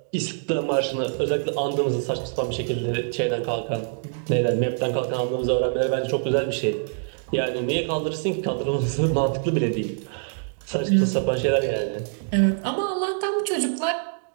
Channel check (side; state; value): left; silent; digital silence